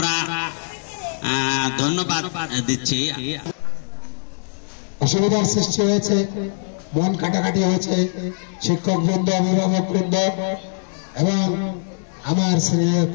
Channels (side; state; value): right; silent; digital silence